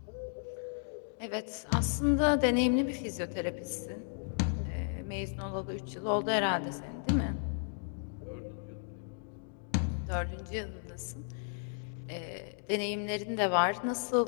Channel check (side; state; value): right; silent; digital silence